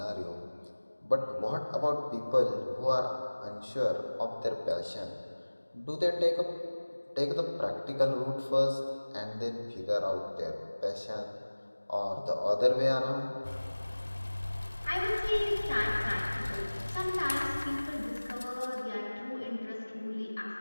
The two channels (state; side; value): inverted; both; correlation -1.00